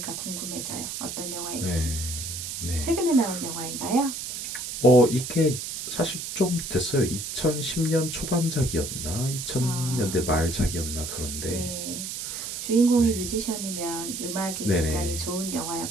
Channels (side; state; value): right; noise; hiss, 6 dB below the sound